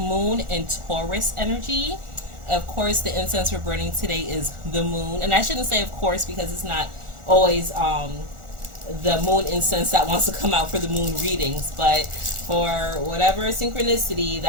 in Taurus energy. Of course, the incense we're burning today is the moon, and I shouldn't say of course because it's not always the moon incense that wants to come out for the moon readings, but for whatever synchronicity,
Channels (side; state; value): left; late; 1.4 ms